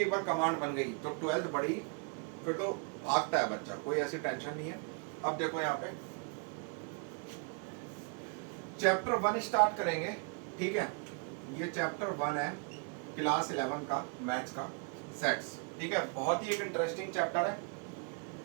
एक बार कमांड बन गई तो 12th बड़ी, फिर तो भागता है बच्चा, कोई ऐसी टेंशन नहीं है। अब देखो यहाँ पे चैप्टर 1 स्टार्ट करेंगे। ठीक है, ये चैप्टर 1 है क्लास 11 का मैथ्स का सेट्स। ठीक है, बहुत ही एक इंटरेस्टिंग चैप्टर है।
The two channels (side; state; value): left; quieter; 37.6 dB